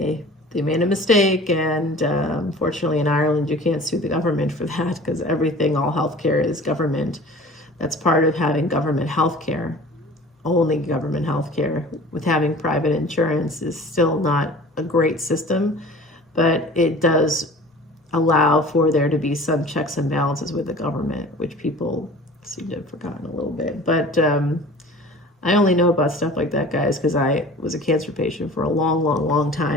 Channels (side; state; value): both; normal; correlation 0.43